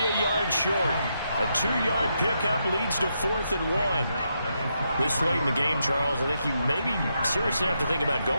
a yard short. A 2-yard pickup leads to 4th and 1. This late in the game, Charles, I think you maybe seriously have to think about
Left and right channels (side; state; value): both; inverted; correlation -0.82